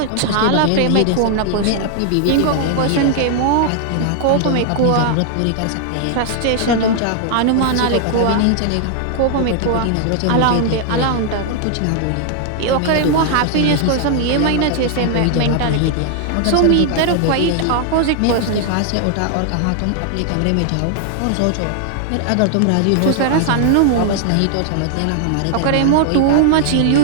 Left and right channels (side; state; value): both; different; correlation 0.00